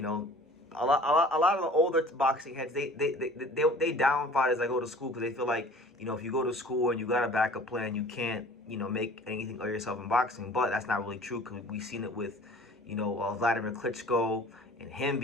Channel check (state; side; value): normal; both; correlation 0.47